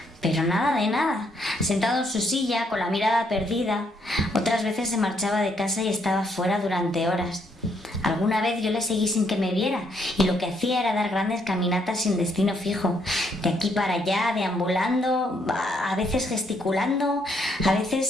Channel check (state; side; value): normal; both; correlation 0.72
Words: Pero nada de nada, sentado en su silla, con la mirada perdida. Otras veces se marchaba de casa y estaba fuera durante horas. Alguna vez yo le seguí sin que me viera y lo que hacía era dar grandes caminatas sin destino fijo, de aquí para allá, deambulando, a veces gesticulando, a